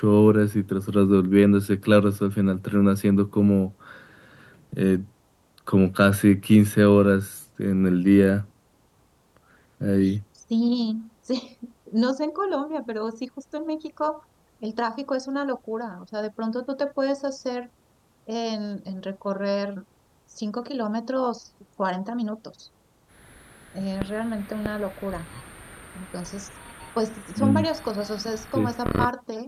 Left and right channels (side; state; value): both; identical; correlation 1.00